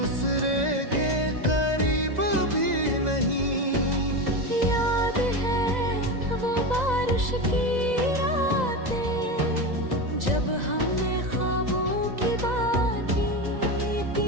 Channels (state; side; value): late; left; 2.0 ms